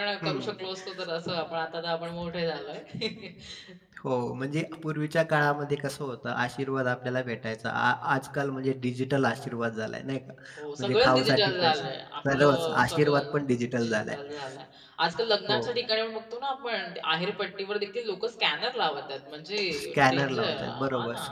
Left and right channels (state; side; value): identical; both; correlation 1.00